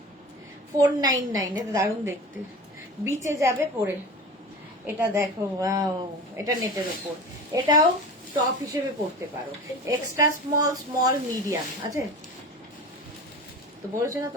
499 এ দারুণ দেখতে, বিচে যাবে পরে। এটা দেখো ওয়াও, এটা নেটের উপর, এটাও টপ হিসেবে পড়তে পারো। এক্সট্রা স্মল স্মল মিডিয়াম আছে তো, বলেছে না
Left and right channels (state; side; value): normal; both; correlation 0.33